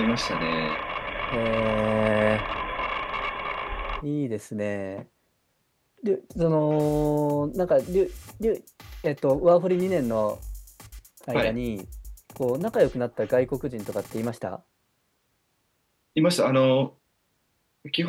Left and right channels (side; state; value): both; identical; correlation 1.00